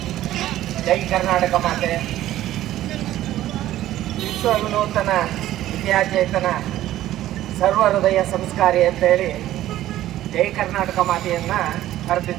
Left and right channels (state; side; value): quieter; left; 13.9 dB